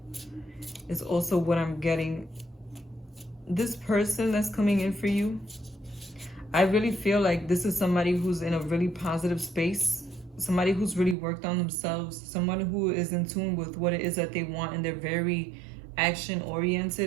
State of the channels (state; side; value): drops out; left; at 11.2 s